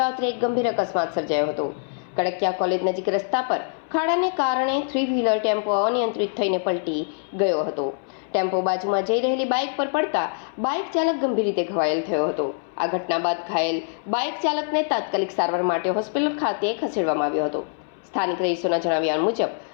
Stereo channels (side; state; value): right; silent; 61 dB below the other